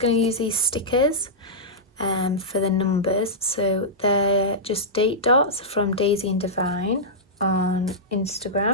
to use these stickers for the numbers. So they're just date dots from Daisy and Divine on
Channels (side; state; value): both; normal; correlation -0.12